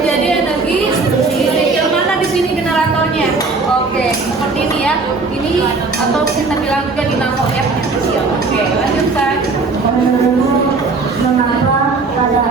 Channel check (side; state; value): left; quieter; 3.9 dB